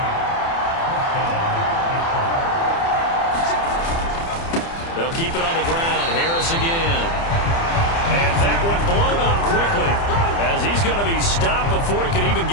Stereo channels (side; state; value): right; late; 30 ms